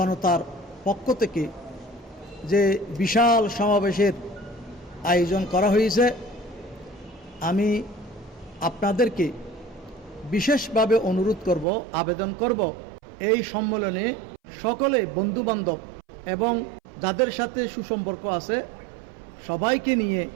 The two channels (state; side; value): drops out; left; at 11.7 s